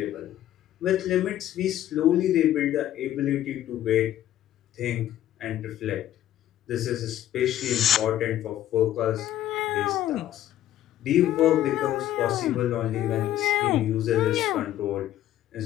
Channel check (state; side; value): quieter; right; 12.6 dB